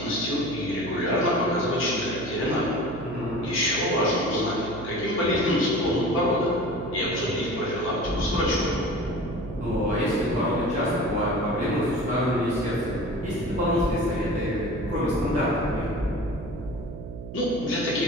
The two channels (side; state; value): right; noise; hum, 10 dB below the sound